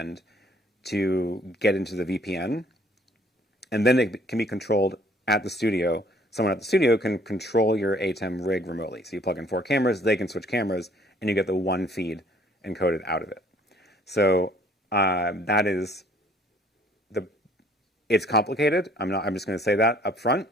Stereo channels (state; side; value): normal; both; correlation 0.59